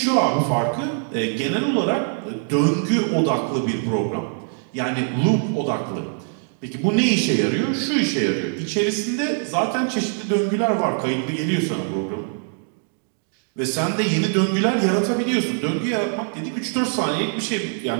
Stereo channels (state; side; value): silent; left; 57 dB below the other